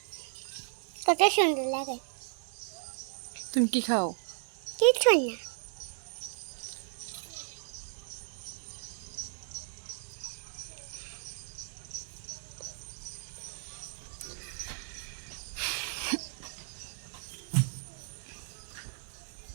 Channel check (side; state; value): left; silent; digital silence